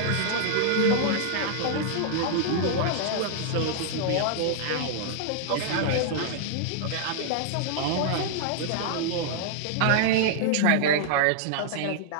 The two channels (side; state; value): both; different; correlation -0.01